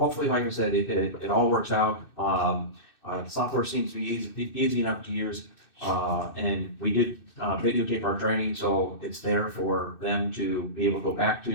like I said, it all works out. Software seems to be easy enough to use. And we did videotape our training, so it's there for them to be able to go back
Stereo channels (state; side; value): late; right; 2.6 ms